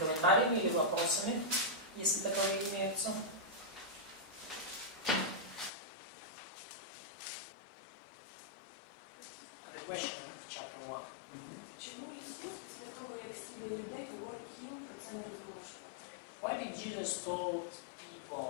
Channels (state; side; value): drops out; right; at 5.7 s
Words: или вопросами, если таковые имеются. The question of chapter 1. Чому Ісус після того, як зцілює людей, говорить їм про це не розголошувати? Why did Jesus told